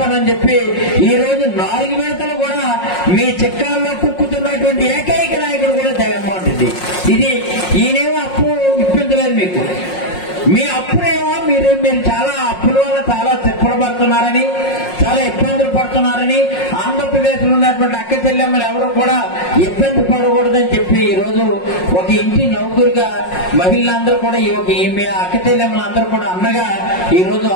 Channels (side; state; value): right; late; 5.5 ms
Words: చెప్పి ఈ రోజు 4 విడతలు కూడా మీ చిక్కాల్లో కుక్కుతున్నటువంటి ఏకైక నాయకుడు కూడా జగన్మోహన్ రెడ్డి. ఇది ఈయనేమో అప్పు ఇప్పించలేదు మీకు. మీ అప్పుడేమో మీరు చాలా అప్పుల వల్ల చాలా తిప్పలు పడుతున్నారని, చాలా ఇబ్బందులు పడుతున్నారని, ఆంధ్రప్రదేశ్ లో ఉన్నటువంటి అక్క చెల్లెమ్మలు ఎవరు కూడా ఇబ్బంది పడకూడదని చెప్పి ఈ రోజు ఒక ఇంటి నౌకరుగా మహిళలందరూ కూడా మీ అక్క చెల్లెమ్మలందరూ కూడా అన్నగా ఈ రోజు